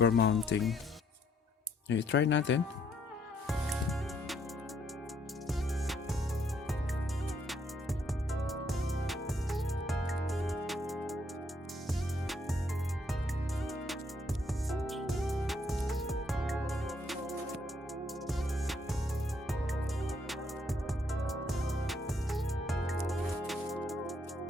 mounting. Okay, try natin.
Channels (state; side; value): normal; both; correlation 0.70